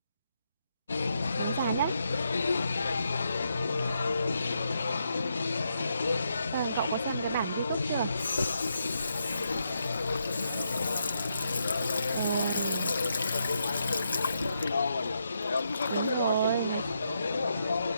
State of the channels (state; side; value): inverted; both; correlation -0.80